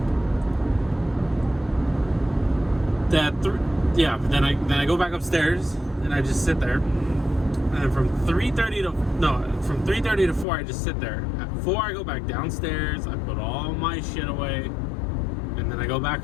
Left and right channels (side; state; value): right; drops out; at 10.5 s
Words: Then I go back upstairs and I just sit there. And from 3:30 to 4, I just sit there. At 4, I go back downstairs. I put all my shit away. And then I go back